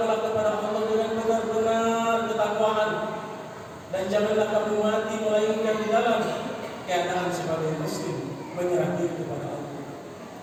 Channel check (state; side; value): identical; both; correlation 1.00